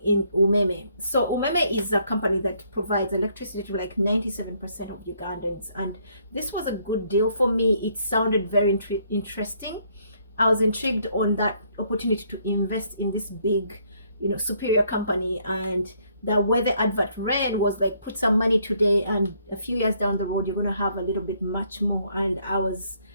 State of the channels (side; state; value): both; inverted; correlation -0.68